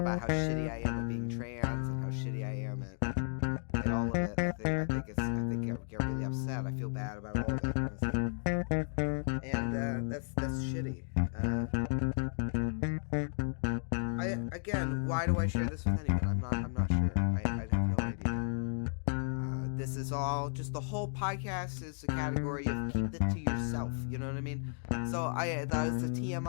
how shitty I am at being trans and how shitty I am at all of it, I get really upset. I feel bad about all of it, honestly. And that's shitty. Again, why do I share this with anyone? I'm not sure. I have no idea. This is all just, the whole podcast is a category of keep it to yourself. You know what I mean? So that was the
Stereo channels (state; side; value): silent; right; digital silence